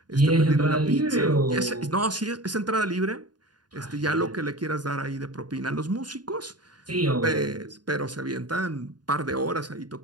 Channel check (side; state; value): left; late; 0.70 ms